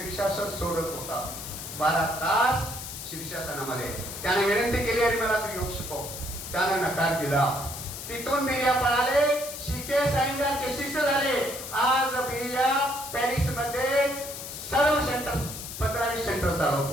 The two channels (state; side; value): noise; left; hiss, 9 dB below the sound